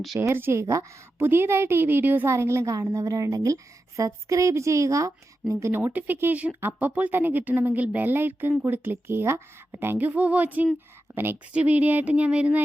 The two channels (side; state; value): both; normal; correlation 0.91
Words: ഷെയർ ചെയ്യുക. പുതിയതായിട്ട് ഈ വീഡിയോസ് ആരെങ്കിലും കാണുന്നവരുണ്ടെങ്കിൽ സബ്സ്ക്രൈബ് ചെയ്യുക. നിങ്ങൾക്ക് നോട്ടിഫിക്കേഷൻ അപ്പോൾ തന്നെ കിട്ടണമെങ്കിൽ ബെൽ ഐക്കൺ കൂടി ക്ലിക്ക് ചെയ്യുക. അപ്പോൾ താങ്ക് യു ഫോർ വാച്ചിങ്. അപ്പോൾ നെക്സ്റ്റ് വീഡിയോ ആയിട്ട് ഞാൻ